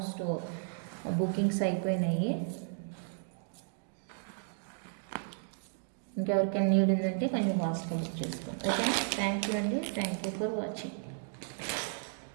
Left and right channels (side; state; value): left; silent; digital silence